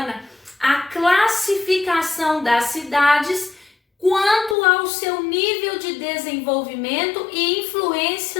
a classificação das cidades quanto ao seu nível de desenvolvimento e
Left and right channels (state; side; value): drops out; right; at 4.5 s